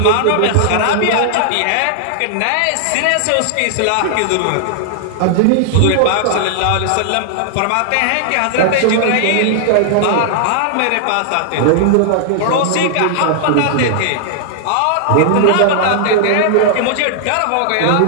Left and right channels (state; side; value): different; both; correlation -0.01